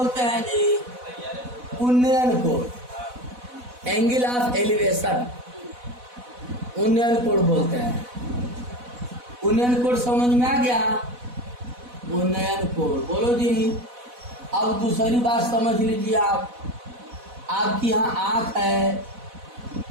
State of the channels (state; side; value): late; left; 4.1 ms